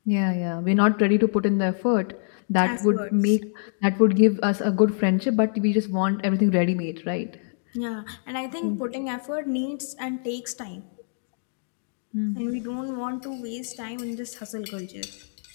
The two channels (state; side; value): silent; right; digital silence